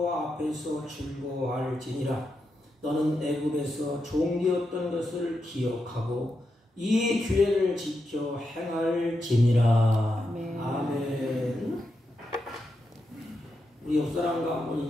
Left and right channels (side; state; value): both; normal; correlation 0.86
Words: 앞에서 즐거워할지니라. 너는 애굽에서 종되었던 것을 기억하고 이 규례를 지켜 행할지니라. 아멘. 아멘. 우리 옆사람과 한번